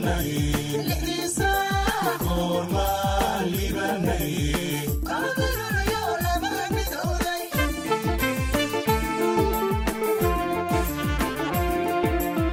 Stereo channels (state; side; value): identical; both; correlation 1.00